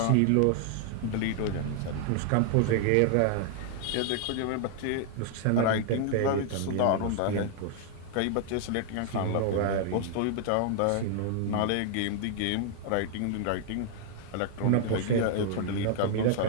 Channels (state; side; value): different; both; correlation 0.00